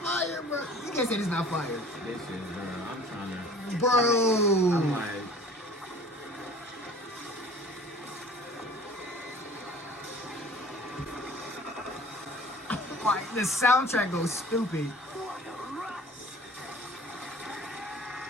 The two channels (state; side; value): normal; both; correlation 0.47